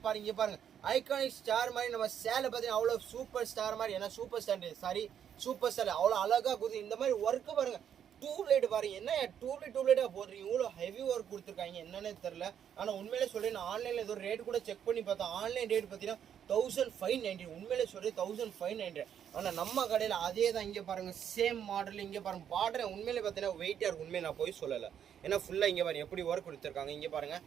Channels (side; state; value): left; quieter; 9.0 dB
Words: பாருங்க. பாருங்க, ஐகானிக் ஸ்டார் மாதிரி நம்ம சேலை பார்த்தீங்கன்னா அவ்வளோ சூப்பர் ஸ்டார் மாதிரி. ஏன்னா சூப்பர் ஸ்டார் சூப்பர் ஸ்டார் அவ்வளோ அழகாக கொடுத்து இந்த மாதிரி ஒர்க்கு பாருங்க. டியூப்லைட் பாருங்க, என்ன டியூப்லைட்டாக போடுறீங்க, இவ்வளோ ஹெவி ஒர்க் கொடுத்துருக்காங்க என்னன்னே தெரில. ஆனால் உண்மையிலே சொல்கிறேன், நான் ஆன்லைனில் ஏதோ ரேட் கூட செக் பண்ணி பார்த்தேன். ஆன்லைன் ரேட் பார்த்தீங்கன்னா 1590. உண்மையிலே சொல்கிறேன் 1590. ஆனால் நம்ம கடையில் அதே தான். இங்கே பாருங்கள், சேம் மாடல். இங்கே பாருங்கள் பார்டர் உண்மையிலே பார்த்தீங்கன்னா வெயிட்டாக இருக்கும். உண்மையை நான் போய் சொல்லலை. ஏன்னா ஃபுல்லாக இங்கே பாருங்கள் எப்படி ஒர்க் கொடுத்துருக்காங்க. இங்கே பாருங்கள்